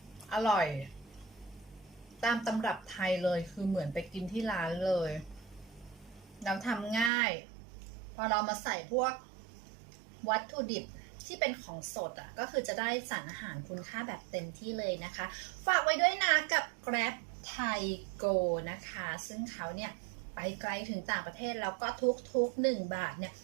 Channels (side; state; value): left; drops out; at 7.1 s